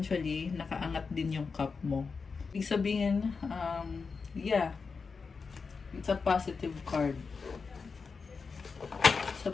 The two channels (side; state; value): right; quieter; 5.0 dB